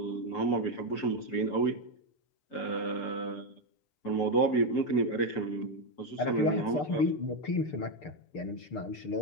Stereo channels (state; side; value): late; right; 6.7 ms